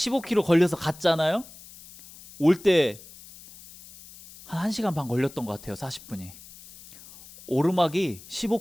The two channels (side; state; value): left; noise; hiss, 20 dB below the sound